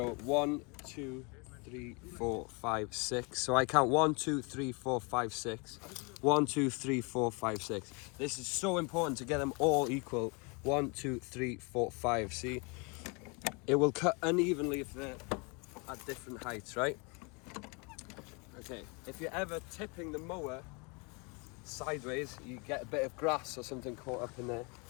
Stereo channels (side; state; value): right; quieter; 31.4 dB